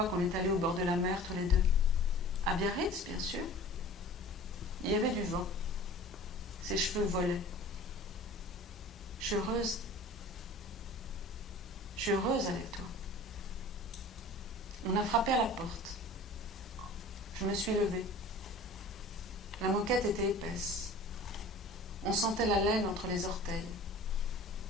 qu'on est allé au bord de la mer tous les deux? À Biarritz, bien sûr. Il y avait du vent. Ses cheveux volaient. Je suis heureuse. Je suis heureuse avec toi. On a frappé à la porte. Je me suis levée. La moquette était épaisse. On sentait la laine entre les orteils.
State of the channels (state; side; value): normal; both; correlation 0.42